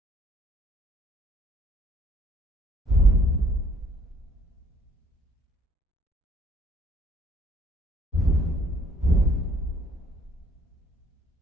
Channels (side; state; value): both; normal; correlation 0.61